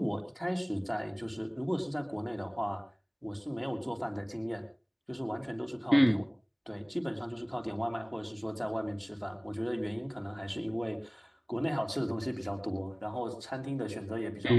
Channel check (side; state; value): both; identical; correlation 1.00